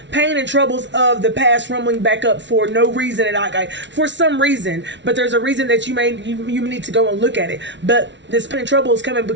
pain and troubles of the past rumbling back up for no reason at all, for some reason, but there's a reason that you need to go and look at it. But this pain and trouble is coming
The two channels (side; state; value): left; late; 0.52 ms